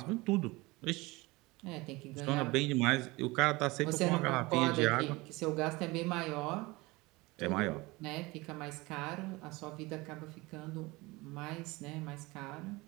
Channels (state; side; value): quieter; left; 22.5 dB